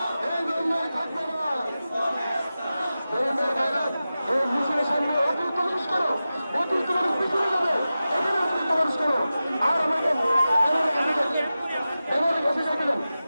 সামনে অতিরিক্ত মানুষ করো, অতিরিক্ত মানুষ পিছনে যাবে, এখানে অতিরিক্ত মানুষ করো। আর আমাকে এবারে কাছে যাইবেন,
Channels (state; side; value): inverted; both; correlation -0.94